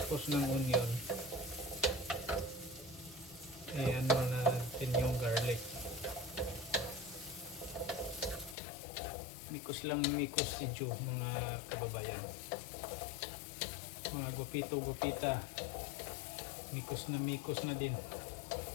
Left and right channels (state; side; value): drops out; right; at 8.6 s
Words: ng onion, ay ano na natin yung garlic. Mikos lang mikos si Joe, mga kababayan. Mga gupito-gupita. Mikos na din.